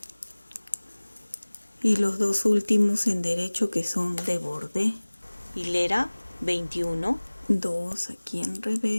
y los dos últimos en derecho que son de borde. Hilera 21. 2 aquí en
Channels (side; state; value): both; inverted; correlation -1.00